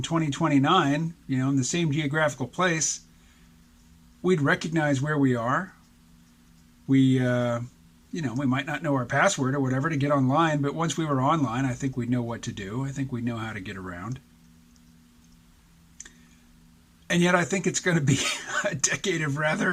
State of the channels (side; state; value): both; identical; correlation 1.00